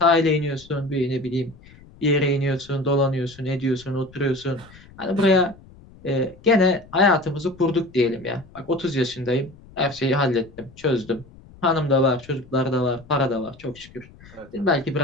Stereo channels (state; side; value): noise; left; rumble, 23 dB below the sound